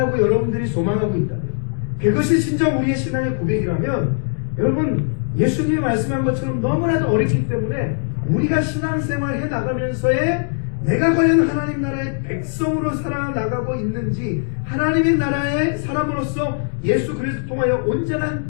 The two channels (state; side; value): silent; right; 66 dB below the other